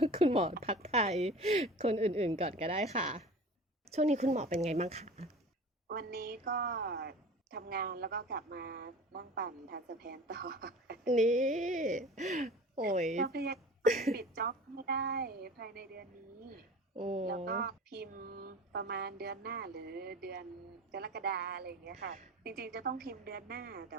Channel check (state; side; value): normal; both; correlation 0.39